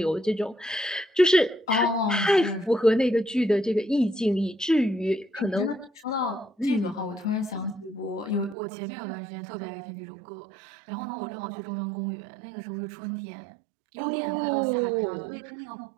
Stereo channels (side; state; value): left; drops out; at 8.6 s